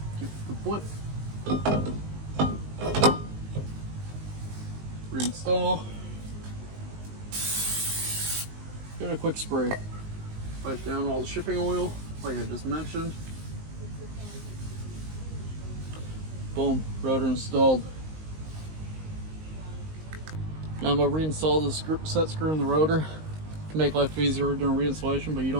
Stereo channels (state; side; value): late; left; 19 ms